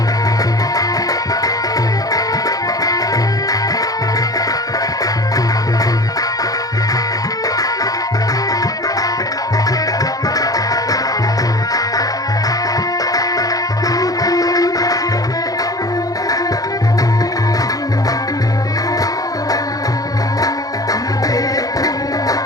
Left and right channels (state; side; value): late; right; 0.18 ms